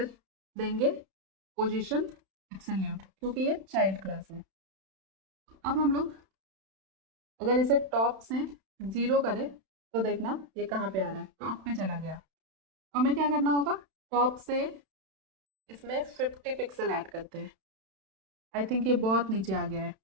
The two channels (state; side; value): late; left; 31 ms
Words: देंगे पोजीशन एब्सोल्यूट, क्योंकि ये चाइल्ड क्लास है। अब हम लोग अगर इसे टॉप से 0 करें तो देखना ये कहाँ पे आ रहा है, टॉप पे चला गया। तो हमें क्या करना होगा, टॉप से इसमें 50 पिक्सल ऐड करते हैं। आई थिंक ये बहुत नीचे आ गया है,